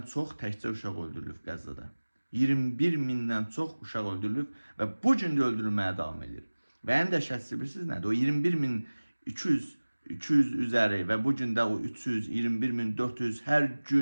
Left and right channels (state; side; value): inverted; both; correlation -1.00